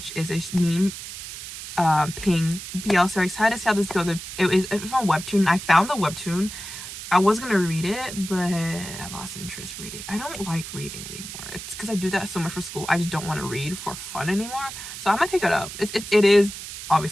is a meme ping BL series. Excited to see how this goes. It's from webtoon. I found the webtoon. I was gonna read it, but I lost interest reading. I don't like reading anymore. It's because I do that so much for school. I just don't want to read for fun anymore. So I might pick it up. It is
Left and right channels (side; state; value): right; noise; hiss, 10 dB below the sound